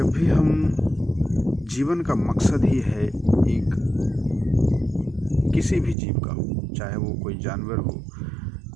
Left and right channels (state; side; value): drops out; left; at 6.0 s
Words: भी हम जीवन का मकसद ही है एक किसी भी जीव का हो, चाहे वो कोई जानवर हो,